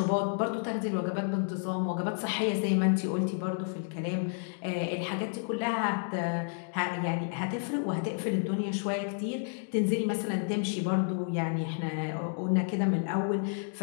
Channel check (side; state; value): right; silent; 57 dB below the other